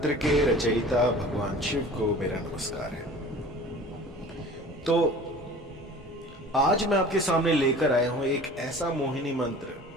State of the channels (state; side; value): normal; both; correlation 0.43